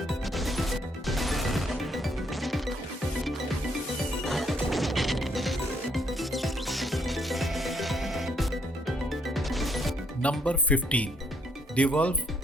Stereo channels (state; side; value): normal; both; correlation 0.71